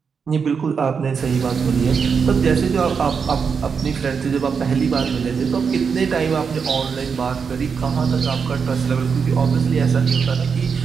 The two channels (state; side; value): quieter; left; 6.0 dB